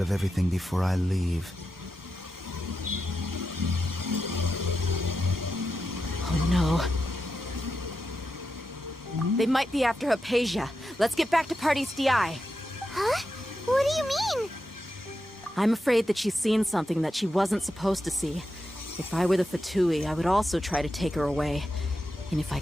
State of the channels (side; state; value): both; normal; correlation 0.88